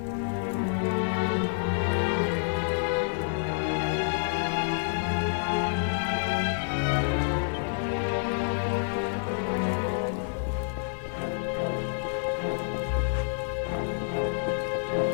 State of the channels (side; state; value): right; silent; 59 dB below the other